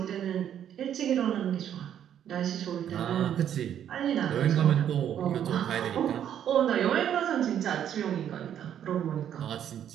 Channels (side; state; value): left; quieter; 9.8 dB